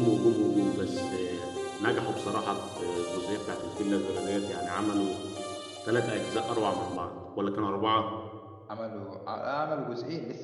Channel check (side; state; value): both; identical; correlation 1.00